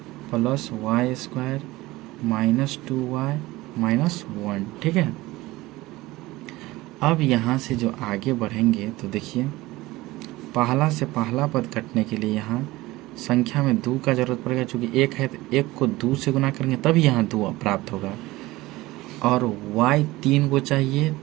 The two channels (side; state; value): left; quieter; 19.2 dB